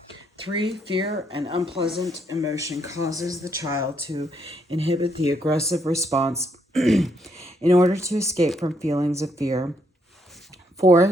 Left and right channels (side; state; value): both; normal; correlation 0.74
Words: 3. Fear and unpleasant emotion causes the child to inhibit the aggressive response in order to escape from feelings of fear.